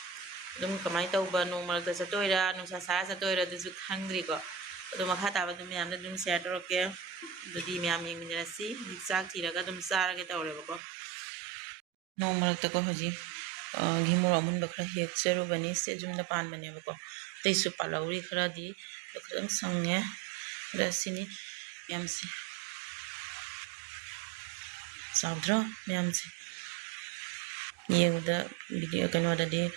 dum kamai tauba no mal da satoira no sa satoira du khangri ko dum makha ta ba dum yam dum share toroke dudi myam ying ni si sak thiraga dum sara ge tawre ko no mal ta ko hoji gimor amun bakra hek cheru bani se jum da pan bane ko tei su palauri khara di khadam sangne rasini yam si saudra myam si yengda video kanwa da di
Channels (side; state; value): left; drops out; at 10.8 s